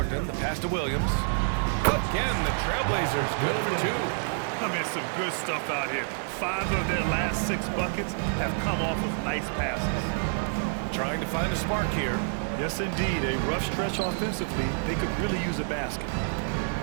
the pass to Williams. Again, the Trailblazers good for 2. I mean, some good stuff out here. 5 of their last 6 buckets have come off of nice passes. Trying to find a spark here. Yes, indeed. A rough stretch offensively. They could really use a basket.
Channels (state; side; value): silent; left; digital silence